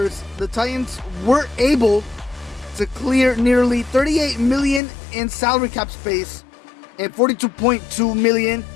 the Titans were able to clear nearly $38 million in salary cap space and $42.2 million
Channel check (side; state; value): right; drops out; at 4.8 s